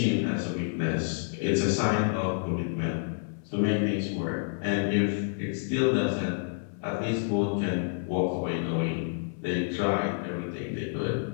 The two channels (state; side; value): silent; right; 59 dB below the other